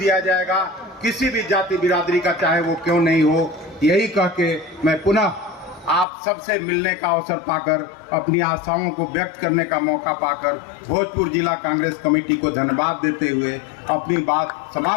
जाएगा, किसी भी जाति बिरादरी का चाहे वो क्यों नहीं हो। यही कह के मैं पुनः आप सबसे मिलने का अवसर पाकर, अपनी आशाओं को व्यक्त करने का मौका पाकर भोजपुर जिला कांग्रेस कमेटी को धन्यवाद देते हुए अपनी बात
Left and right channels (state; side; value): drops out; right; at 6.1 s